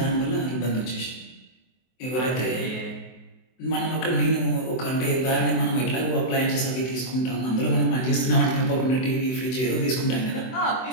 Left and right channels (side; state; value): right; late; 24 ms